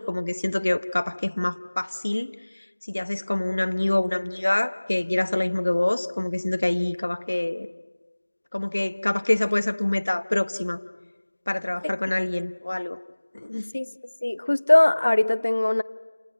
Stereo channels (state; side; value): inverted; both; correlation -1.00